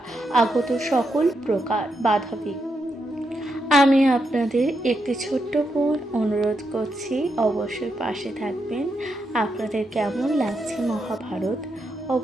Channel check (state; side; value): normal; both; correlation 0.82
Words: আগত সকল প্রকার বাধাবিঘ্ন। আমি আপনাদের একটি ছোট্ট বোন অনুরোধ করছি, অবশ্যই পাশে থাকবেন। আপনাদের কেমন লাগছে মহাভারত